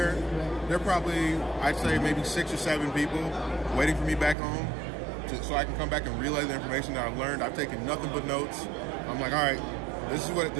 There are probably, I'd say, maybe 6 or 7 people waiting for me back home so I can come back and relay the information that I've learned. I've taken nothing but notes. I'm like, all right, this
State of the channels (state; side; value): drops out; left; at 4.4 s